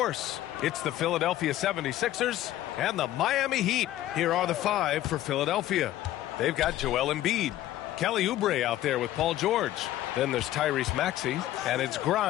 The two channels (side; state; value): right; quieter; 13.9 dB